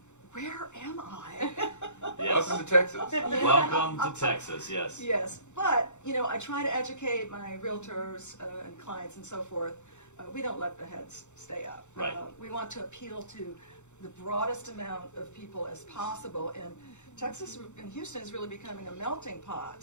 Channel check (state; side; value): late; right; 0.83 ms